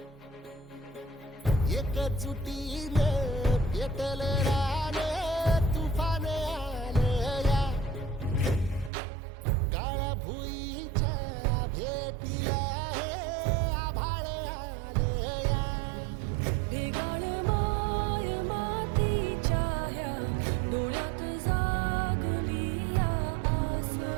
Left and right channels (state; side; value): drops out; left; at 8.9 s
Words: एकजुटीनं पेटल रान तुफान आलया काळ्या भुईच्या भेटीला हे आभाळ आलया ढेगाळ माय मातीच्या ह्या डोळ्यात जागली या आस